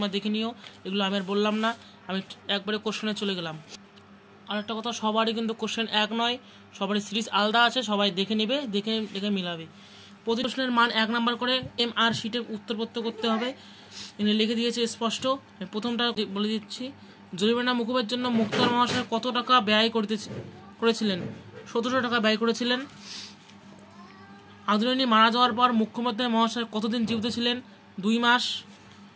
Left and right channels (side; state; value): both; identical; correlation 1.00